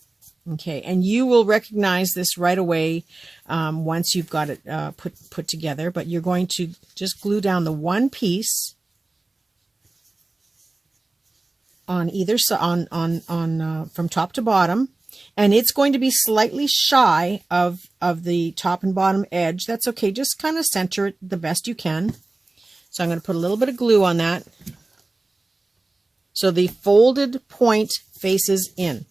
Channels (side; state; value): left; quieter; 3.1 dB